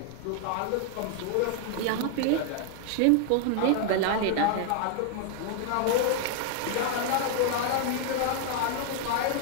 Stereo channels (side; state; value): both; different; correlation 0.00